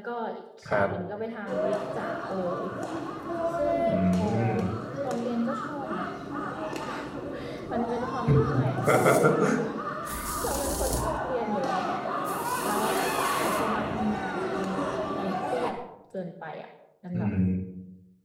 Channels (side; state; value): both; identical; correlation 1.00